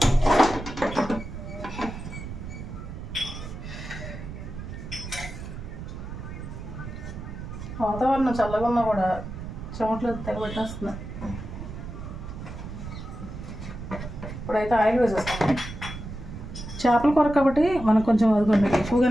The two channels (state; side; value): noise; right; rumble, 9 dB below the sound